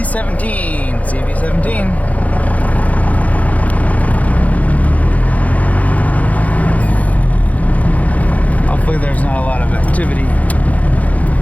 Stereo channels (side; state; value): right; late; 0.072 ms